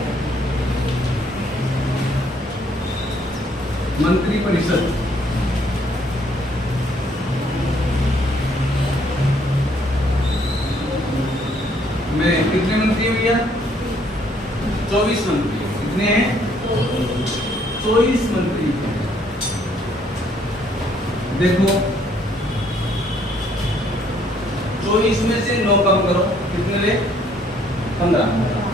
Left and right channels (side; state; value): both; normal; correlation 0.66